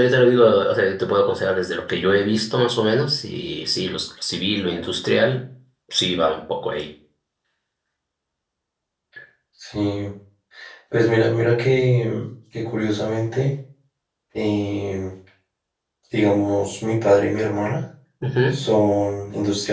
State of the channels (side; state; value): both; identical; correlation 1.00